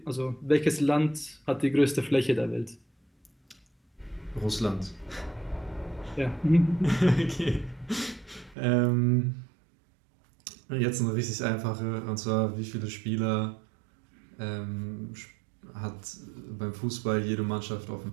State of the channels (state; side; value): drops out; left; at 8.6 s